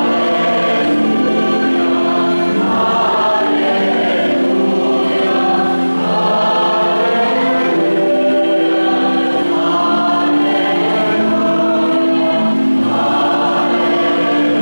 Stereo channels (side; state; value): both; inverted; correlation -1.00